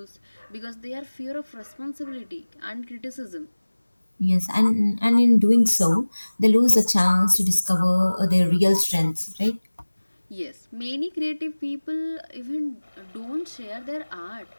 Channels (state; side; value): inverted; both; correlation -1.00